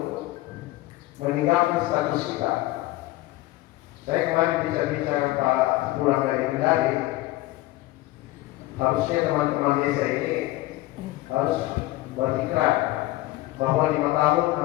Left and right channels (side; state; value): right; quieter; 18.1 dB